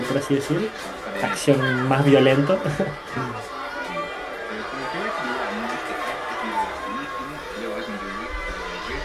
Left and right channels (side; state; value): both; identical; correlation 1.00